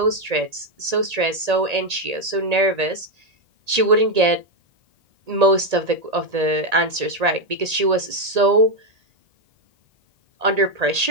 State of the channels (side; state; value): left; late; 1.8 ms